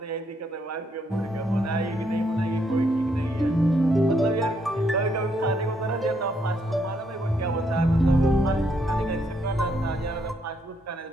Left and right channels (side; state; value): both; normal; correlation 0.74